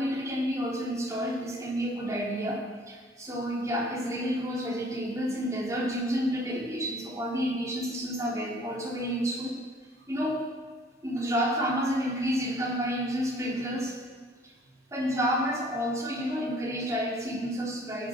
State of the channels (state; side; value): normal; both; correlation 0.55